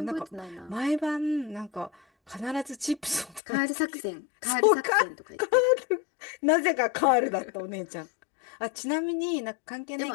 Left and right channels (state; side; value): drops out; right; at 3.4 s